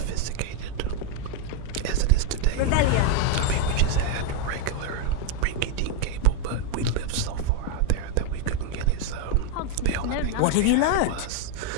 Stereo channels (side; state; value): both; different; correlation 0.01